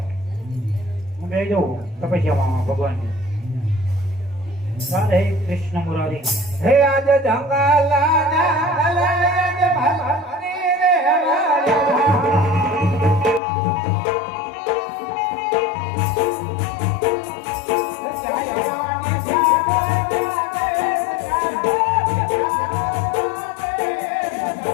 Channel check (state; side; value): drops out; right; at 13.4 s